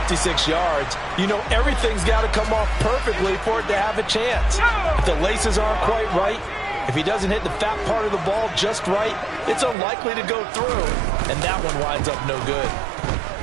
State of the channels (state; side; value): drops out; left; at 9.8 s